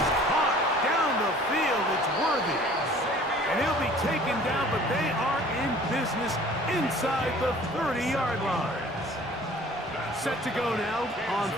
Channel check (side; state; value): both; normal; correlation 0.50